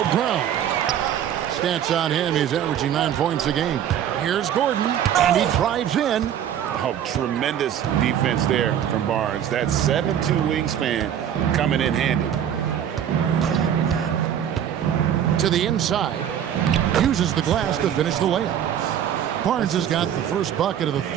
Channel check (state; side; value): quieter; left; 9.7 dB